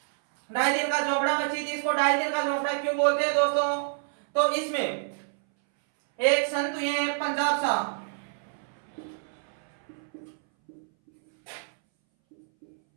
2.5 दिन का झोपड़ा मस्जिद, इसको 2.5 दिन का झोपड़ा क्यों बोलते हैं दोस्तों? तो इसमें एक संत हुए हैं पंजाब साहब।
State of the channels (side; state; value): left; silent; 60 dB below the other